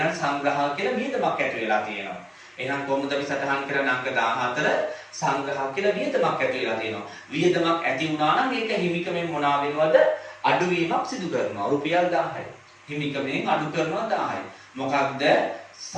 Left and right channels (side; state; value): both; identical; correlation 1.00